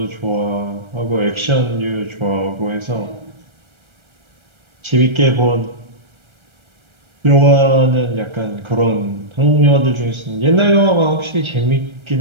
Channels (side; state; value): left; late; 1.3 ms